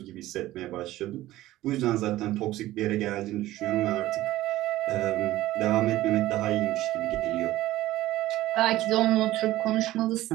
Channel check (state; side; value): quieter; left; 15.8 dB